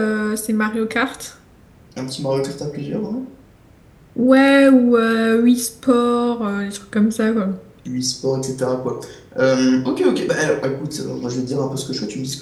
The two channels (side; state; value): both; identical; correlation 1.00